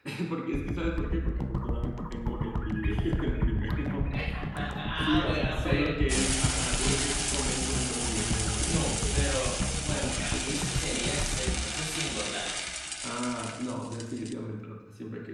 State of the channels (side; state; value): both; identical; correlation 1.00